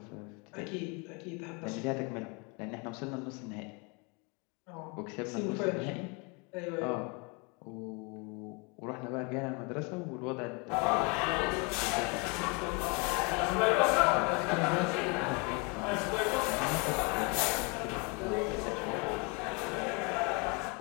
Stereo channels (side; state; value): right; quieter; 31.5 dB